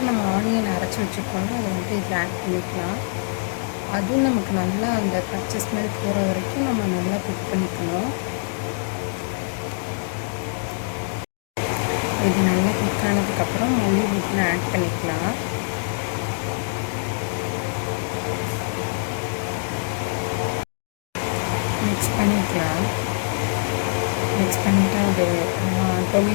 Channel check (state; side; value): silent; right; digital silence